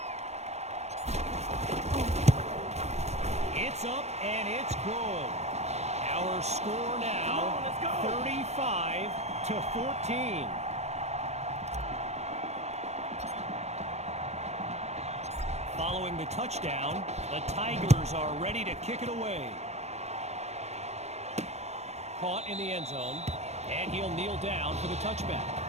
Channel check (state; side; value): late; left; 0.32 ms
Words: It's up and it's good. Our score now 35-14. Following the touchdown, the Tigers are ready to kick it away. Caught in the end zone, and he'll kneel down for the touchback.